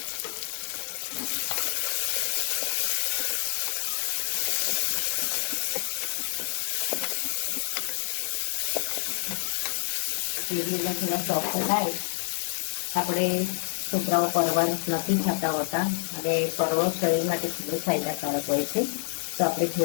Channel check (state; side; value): silent; right; 60 dB below the other